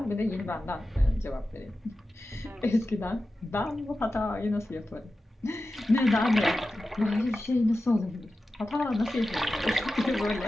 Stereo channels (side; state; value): both; normal; correlation 0.93